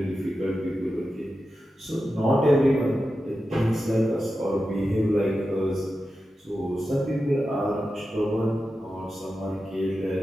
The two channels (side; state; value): both; normal; correlation 0.91